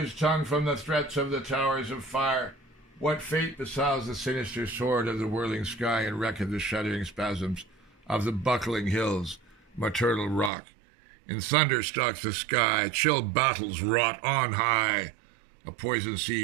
tongue from the threats of the towers of fire? What fate besows the sinister sword of the whirling sky and wreck of the shuddering spasms of the buckling hills, maternal rock? In thunder stalks the sky, chill battles wrought on high. A poison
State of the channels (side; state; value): left; drops out; at 10.5 s